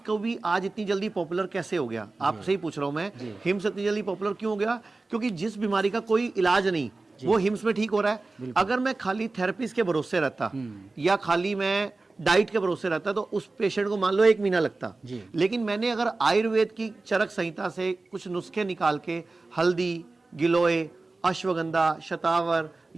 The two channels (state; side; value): quieter; left; 3.4 dB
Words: भी आज इतनी जल्दी पॉपुलर कैसे हो गया? आपसे ही पूछ रहा हूं मैं, हिम्स इतनी जल्दी पॉपुलर क्यों हो गया? क्योंकि जिस बीमारी का कोई इलाज नहीं वो हिम्स में ठीक हो रहा है। अगर मैं खाली थेरेपिस्ट के भरोसे रहता या खाली मैं डाइट के भरोसे रहता तो उस पेशेंट को मान लो 1 महीना लगता, लेकिन मैंने अगर आयुर्वेद की चरक संहिता से कुछ नुस्खे निकाल के हल्दी, गिलोय, अश्वगंधा, शतावर